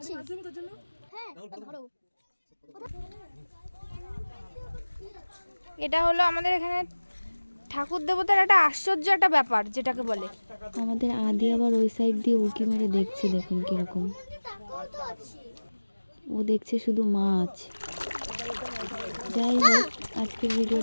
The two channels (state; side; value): inverted; both; correlation -1.00